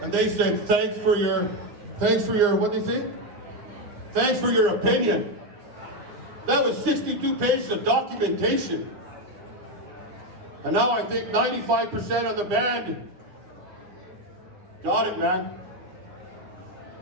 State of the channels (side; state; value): left; late; 9.7 ms